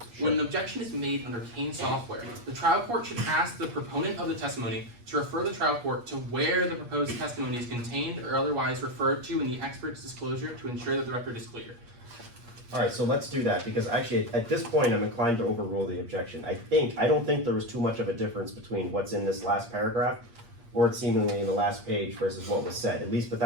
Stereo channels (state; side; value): late; left; 8.5 ms